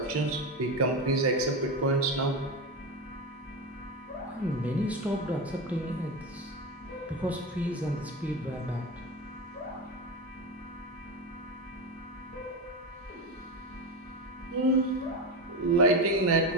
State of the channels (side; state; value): both; normal; correlation 0.18